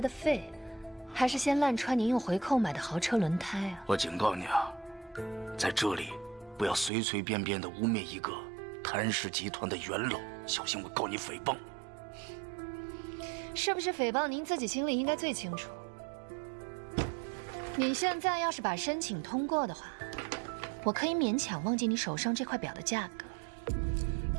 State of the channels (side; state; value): left; drops out; at 6.9 s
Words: 的肺，还是先烂穿您用回扣买的豪车轮胎啊？我警告你啊，在这里不要随随便便的污蔑一个谭氏集团的元老，小心我告你诽谤。是不是诽谤您自己心里应该最清楚。你现在要是把申请通过的话，我可以勉强忘记你手上这块表的价格，